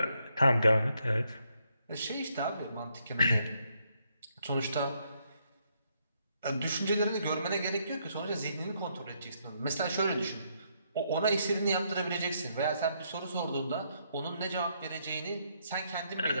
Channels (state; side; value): inverted; both; correlation -0.75